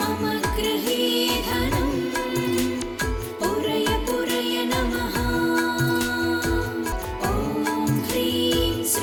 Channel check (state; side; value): identical; both; correlation 1.00